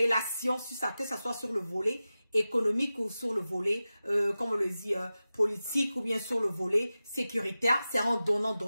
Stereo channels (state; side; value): inverted; both; correlation -0.94